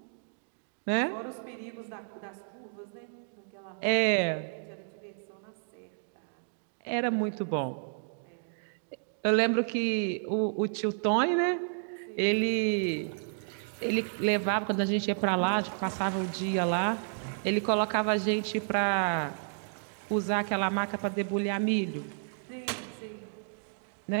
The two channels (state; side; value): silent; left; digital silence